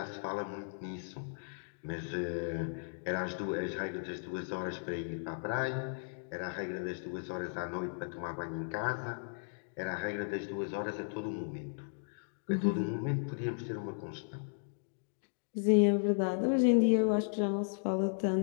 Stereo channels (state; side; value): silent; right; digital silence